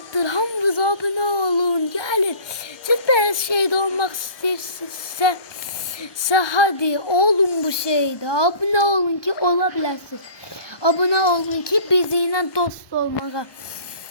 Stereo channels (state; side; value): late; right; 1.1 ms